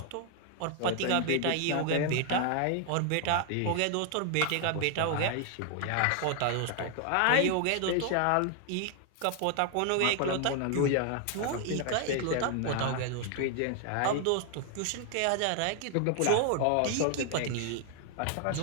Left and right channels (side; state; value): both; different; correlation 0.00